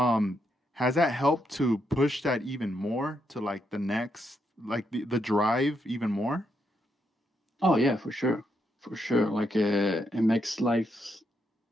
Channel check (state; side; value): normal; both; correlation 0.79